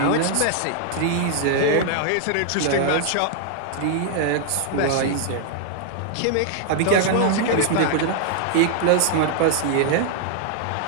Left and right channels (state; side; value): different; both; correlation -0.01